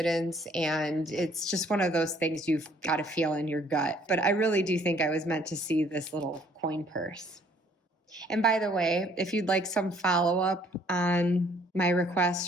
And it's just one of those things you've got to feel in your gut. But I really do think I was meant to see this little coin purse. And by the way, if you'd like some follow-up on my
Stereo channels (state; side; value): normal; both; correlation 0.61